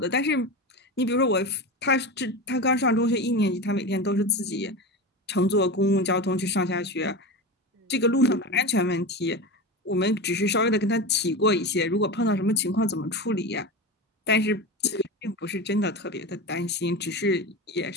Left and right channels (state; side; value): normal; both; correlation 0.24